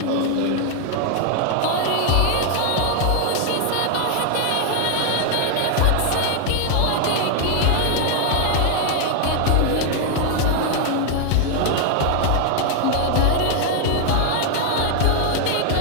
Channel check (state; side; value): different; both; correlation 0.00